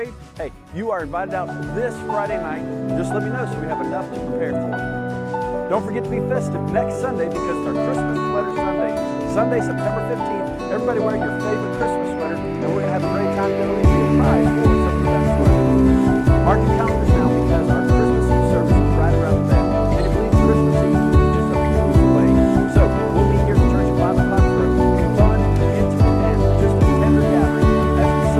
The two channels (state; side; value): identical; both; correlation 1.00